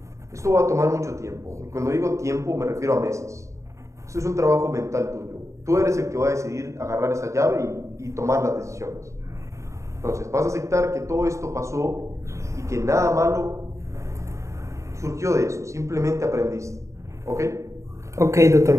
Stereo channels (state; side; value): late; left; 0.15 ms